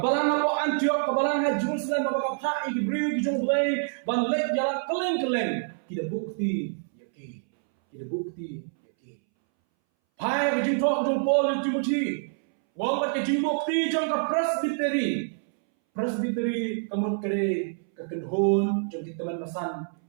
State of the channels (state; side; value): silent; left; 60 dB below the other